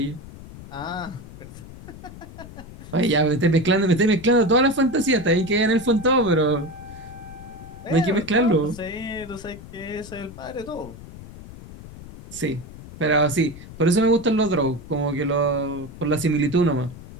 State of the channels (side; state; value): left; noise; rumble, 16 dB below the sound